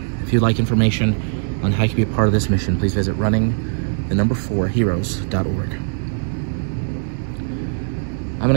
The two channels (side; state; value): left; silent; digital silence